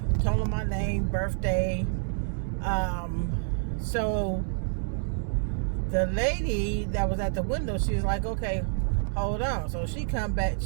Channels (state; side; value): silent; left; 59 dB below the other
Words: told them my name, birthday. So the lady that was at the window, she was like, okay, hold on. So she come back,